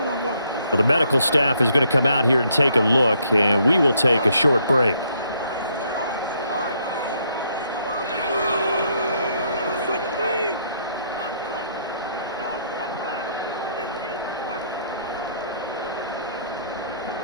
the medical staff is going to come out here and take a look, and we will take a short break.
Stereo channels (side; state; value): both; inverted; correlation -0.70